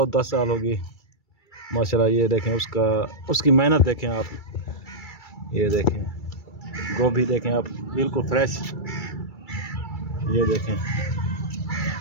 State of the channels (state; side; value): late; right; 2.3 ms